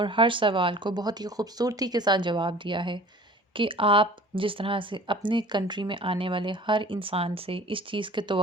ہر سوال کو بہت ہی خوبصورتی کے ساتھ جواب دیا ہے کہ آپ جس طرح سے اپنے کنٹری میں آنے والے ہر انسان سے اس چیز کی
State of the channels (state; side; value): normal; both; correlation 0.46